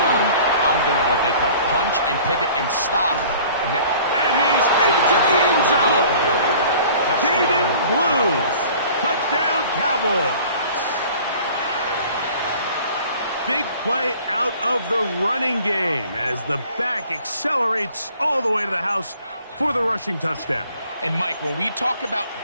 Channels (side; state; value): both; inverted; correlation -0.49